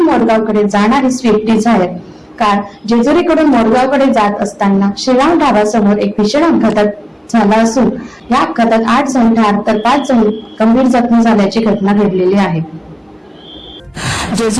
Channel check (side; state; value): both; identical; correlation 1.00